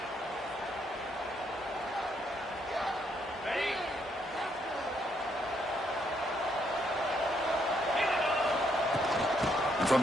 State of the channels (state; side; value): normal; both; correlation 0.73